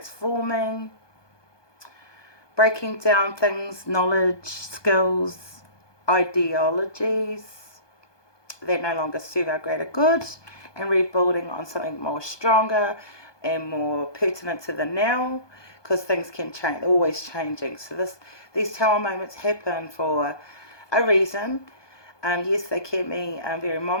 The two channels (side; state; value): right; late; 1.2 ms